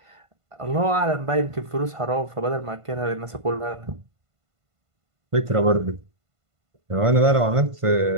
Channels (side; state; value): left; late; 1.5 ms